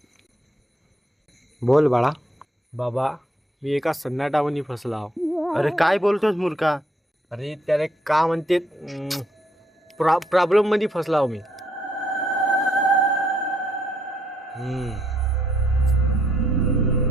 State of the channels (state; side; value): normal; both; correlation 0.71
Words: बोल बाळा बाबा मी एका सन्नाटावनी फसला आहो अरे काय बोलतोस मूर्खा अरे त्याला का म्हणते प्रॉब्लेम मध्ये फसला आहो मी